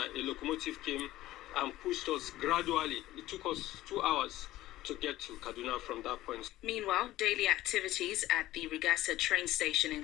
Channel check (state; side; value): quieter; right; 15.7 dB